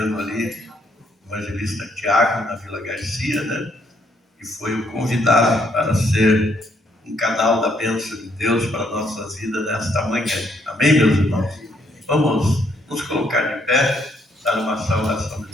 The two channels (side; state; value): both; normal; correlation 0.71